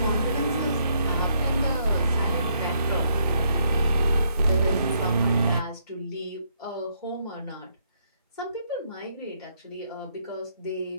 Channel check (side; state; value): both; inverted; correlation -0.72